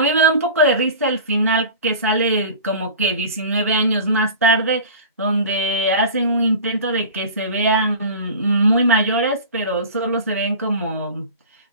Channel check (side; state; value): both; inverted; correlation -0.36